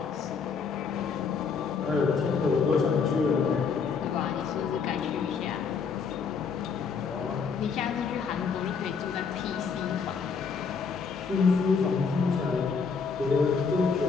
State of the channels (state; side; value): quieter; right; 5.6 dB